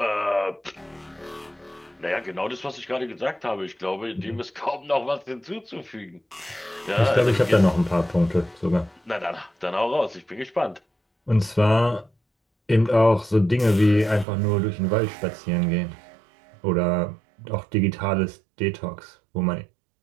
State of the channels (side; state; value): left; drops out; at 14.2 s